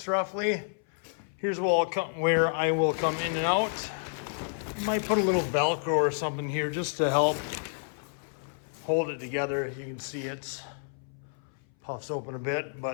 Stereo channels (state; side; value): silent; right; 58 dB below the other